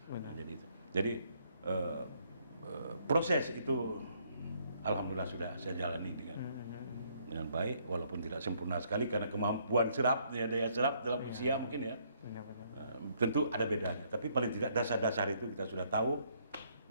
Benar. Nah, jadi proses itu alhamdulillah sudah saya jalani dengan baik, walaupun tidak sempurna sekali karena kemampuan serapnya, daya serap dalam usia mungkin ya. Benar. Tentu ada bedanya, tapi paling tidak dasar-dasar itu kita sudah tahu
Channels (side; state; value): both; inverted; correlation -0.69